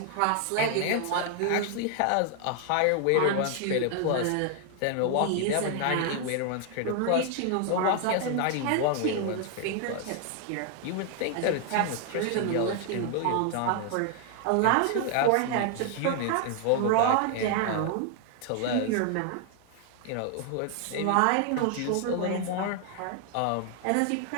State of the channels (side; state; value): both; different; correlation 0.00